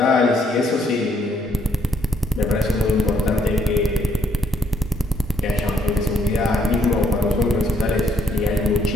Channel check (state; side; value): normal; both; correlation 0.71